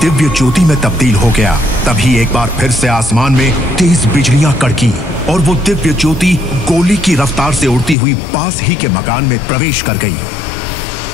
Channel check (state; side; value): drops out; right; at 8.0 s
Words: दिव्य ज्योति में तब्दील हो गया। तभी एक बार फिर से आसमान में तेज बिजलियां कड़की और वो दिव्य ज्योति गोली की रफ्तार से उड़ती हुई पास ही के मकान में प्रवेश कर गई